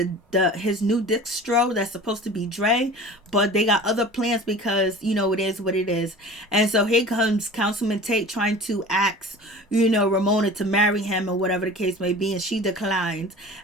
his new distro that's supposed to be Dre, but they got other plans because, it is what it is. And so here comes Councilman Tate trying to ask, Ramona to marry him or whatever the case may be, and she declines.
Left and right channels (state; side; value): normal; both; correlation 0.40